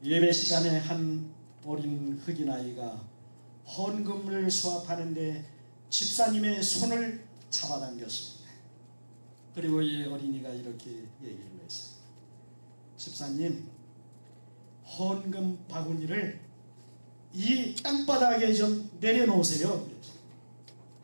예배 시간에 한 어린 흑인 아이가 헌금을 수합하는데 집사님의 손을 잡아당겼습니다. 그리고 이 어린이가 이렇게 얘기를 했어요. 집사님, 헌금 바구니를 이 땅바닥에 좀 내려놓으세요.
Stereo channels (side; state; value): both; inverted; correlation -1.00